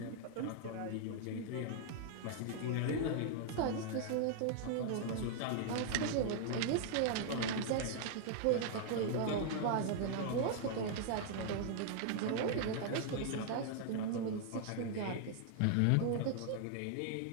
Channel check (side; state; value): both; different; correlation 0.00